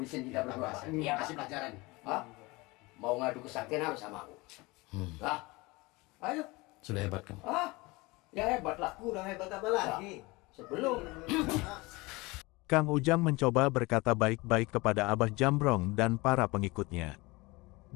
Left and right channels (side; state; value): right; quieter; 23.4 dB